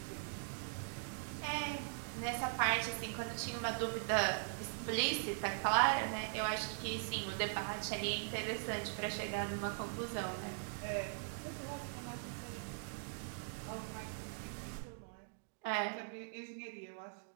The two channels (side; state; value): left; silent; digital silence